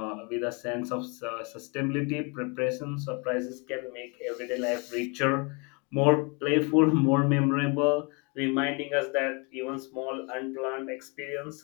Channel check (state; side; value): quieter; right; 31.7 dB